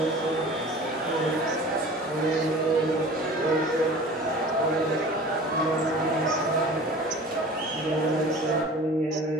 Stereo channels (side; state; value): both; normal; correlation 0.41